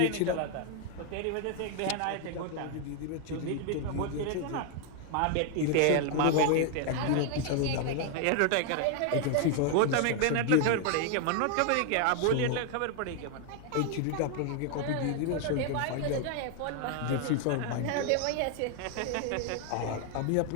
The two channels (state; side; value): different; both; correlation 0.00